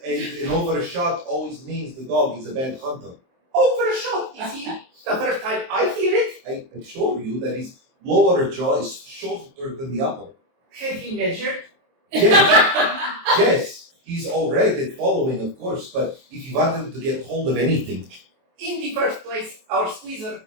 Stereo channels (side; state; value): left; late; 23 ms